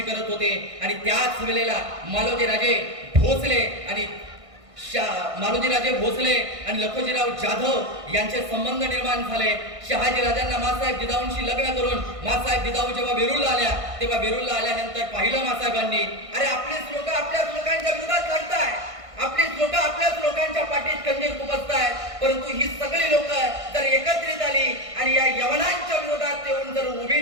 करत होते. आणि त्याच वेळेला मालोजीराजे भोसले आणि मालोजीराजे भोसले आणि लखोजीराव जाधव यांचे संबंध निर्माण झाले. शहाजी राजांना मासाहेब जिजाऊंशी लग्न करून मासाहेब जिजाऊ जेव्हा वेरूळला आल्या, तेव्हा वेरूळला आल्यानंतर पाहिलं मासाहेबांनी, अरे आपलीच लोक आपल्याच लोकांच्या विरोधात लढताय, आपलीच लोक आपल्याच लोकांच्या पाठीत खंजीर खुपसतायत. परंतु ही सगळी लोक जर एकत्रित आली आणि या यवनांच्या विरोधात येऊन जर उभी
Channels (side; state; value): left; late; 1.6 ms